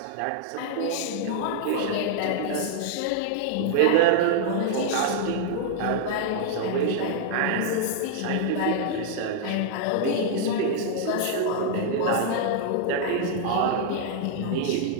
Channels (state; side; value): different; both; correlation -0.01